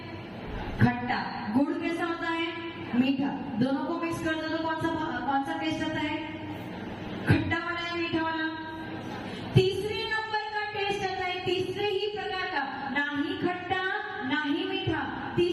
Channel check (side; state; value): both; identical; correlation 1.00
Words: खट्टा। गुड़ कैसा होता है? मीठा। दोनों को मिक्स कर दो तो कौन सा टेस्ट आता है? खट्टा वाला या मीठा वाला? तीसरे नंबर का टेस्ट आता है, तीसरे ही प्रकार का, ना ही खट्टा ना ही मीठा,